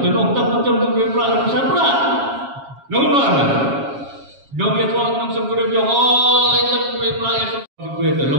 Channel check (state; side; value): late; left; 7.3 ms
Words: Dan orang tak macam juga berat besar berat. Namun mana? Jom dia tuan nam sebut dia oh lain juga berat ya juga